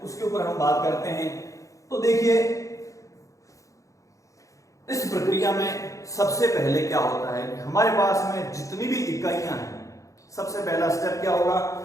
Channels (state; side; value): late; right; 0.16 ms